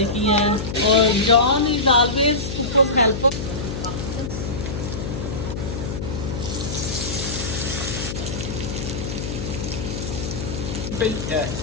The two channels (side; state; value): left; noise; hum, 5 dB below the sound